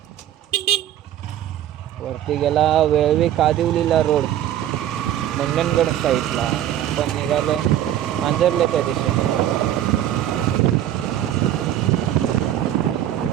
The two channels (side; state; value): left; quieter; 11.7 dB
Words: वरती गेला वेळवी कादिवलीला रोड मंडणगड साईडला. आपण निघालो मांजरल्याच्या दिशेने.